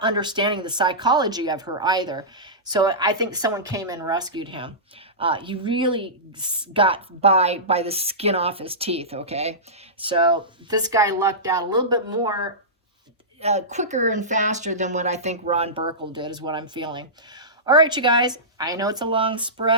understanding the psychology of her either. So I think someone came in and rescued him. He really got by the skin off his teeth, okay? So this guy lucked out a little bit more, quicker and faster than what I think Ron Burkle did, is what I'm feeling. All right, you guys, I know it's a long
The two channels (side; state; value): both; normal; correlation -0.17